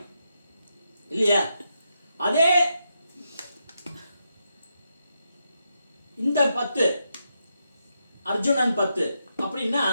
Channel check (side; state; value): both; inverted; correlation -0.83